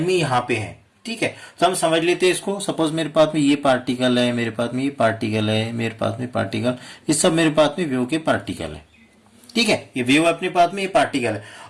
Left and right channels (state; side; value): identical; both; correlation 1.00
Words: में यहाँ पे है। ठीक है, तो हम समझ लेते हैं इसको। सपोज मेरे पास में ये पार्टिकल है, मेरे पास में ये पार्टिकल है, मेरे पास में पार्टिकल, ये सब मेरे पास में वेव के पार्टिकल है। ठीक है, ये वेव अपने पास में ये पार्टिकल है